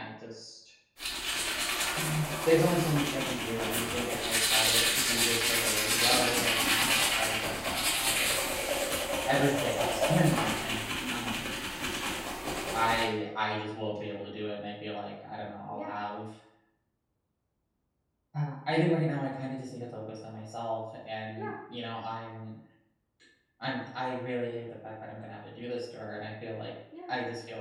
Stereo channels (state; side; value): identical; both; correlation 1.00